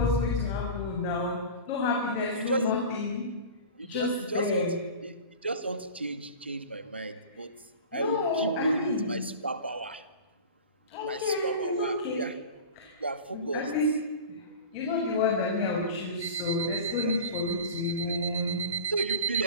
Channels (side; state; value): both; inverted; correlation -0.35